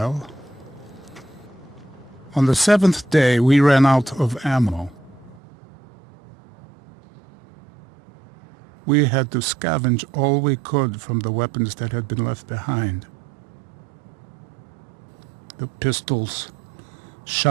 On the 7th day, we ran out of ammo. We had to scavenge all we could from the weapons that had been left behind. The pistols,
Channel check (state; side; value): drops out; left; at 5.4 s